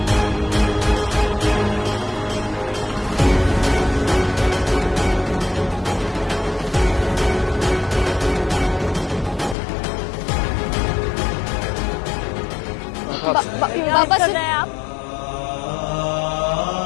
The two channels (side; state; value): right; drops out; at 9.6 s